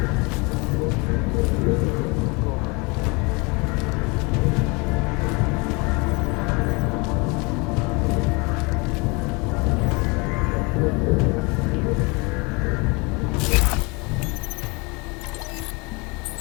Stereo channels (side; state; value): right; quieter; 28.4 dB